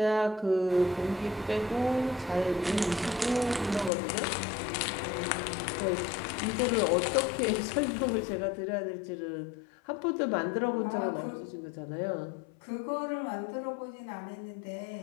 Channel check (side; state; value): right; drops out; at 3.9 s